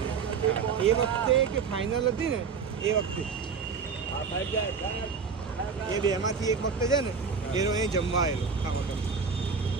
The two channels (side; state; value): left; quieter; 5.5 dB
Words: હા. એ વખતે કે ફાઇનલ હતી ને એ વખતે એ બેમાંથી એક વખતે છે ને એનો અહીં જમવા આવેલો આ હોટલ.